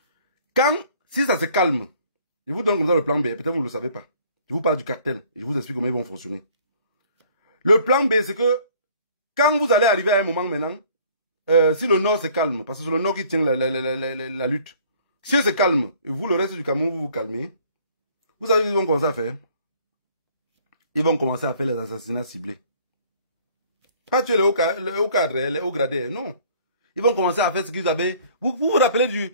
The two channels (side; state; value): both; inverted; correlation -0.56